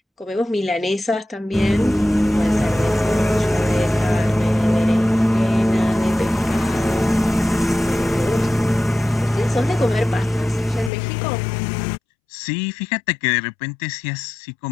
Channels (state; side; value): drops out; right; at 10.9 s